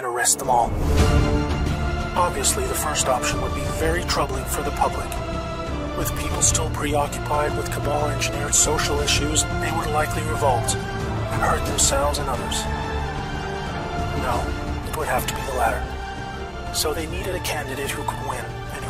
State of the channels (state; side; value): identical; both; correlation 1.00